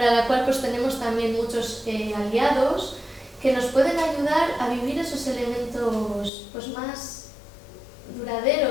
la cual pues tenemos también muchos aliados que nos pueden ayudar a vivir esos elementos pues más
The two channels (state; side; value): drops out; right; at 6.3 s